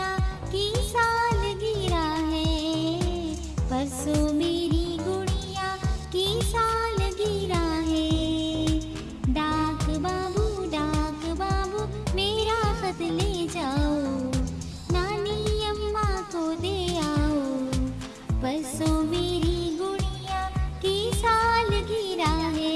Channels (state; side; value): identical; both; correlation 1.00